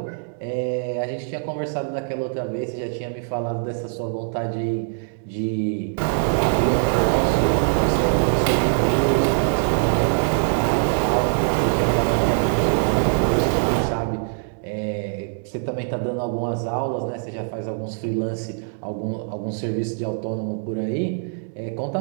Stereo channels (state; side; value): silent; left; digital silence